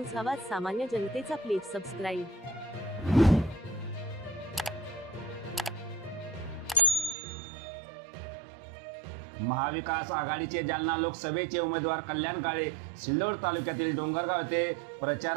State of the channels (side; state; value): left; drops out; at 7.2 s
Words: आवाज सामान्य जनतेचा. Please subscribe. महाविकास आघाडीचे जालना लोकसभेचे उमेदवार कल्याण काळे सिल्लोड तालुक्यातील डोंगरगाव येथे